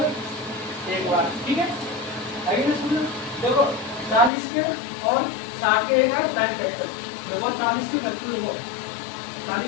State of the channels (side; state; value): right; drops out; at 4.3 s